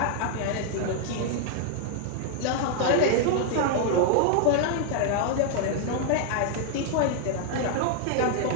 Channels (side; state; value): both; different; correlation 0.00